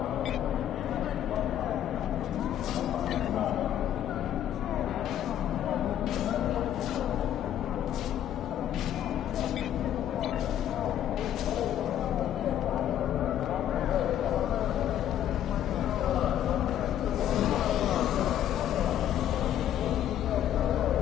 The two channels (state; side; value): quieter; right; 11.0 dB